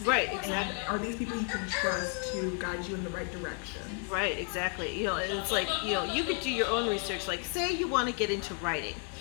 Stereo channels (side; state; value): right; quieter; 39.6 dB